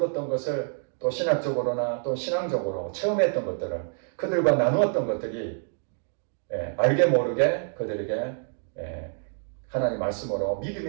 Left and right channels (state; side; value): silent; left; 60 dB below the other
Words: 것을 또 신학적으로나 또 신앙적으로 체험했던 것들을 그들과 나누었던 것들이 알게 모르게 그들에게 하나님 말씀으로